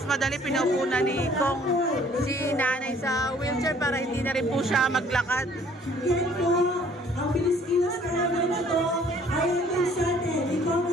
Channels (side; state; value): both; normal; correlation 0.57